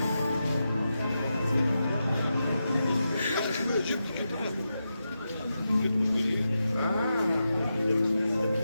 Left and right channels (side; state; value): both; inverted; correlation -0.88